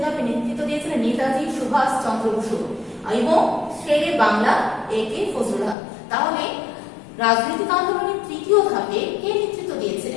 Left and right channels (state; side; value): drops out; right; at 5.8 s